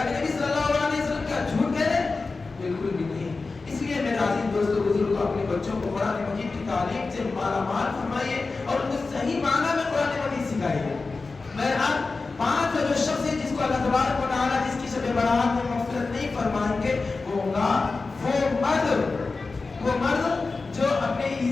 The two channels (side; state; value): right; quieter; 3.9 dB